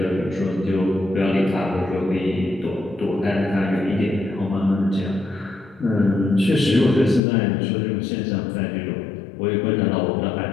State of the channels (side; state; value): right; drops out; at 7.2 s